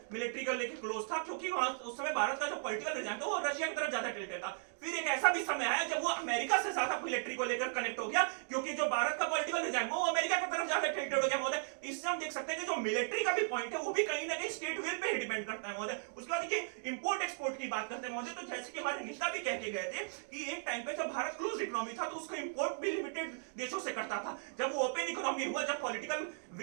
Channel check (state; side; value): silent; left; digital silence